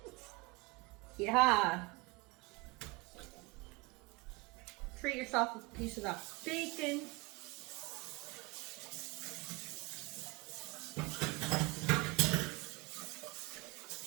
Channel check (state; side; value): quieter; left; 25.2 dB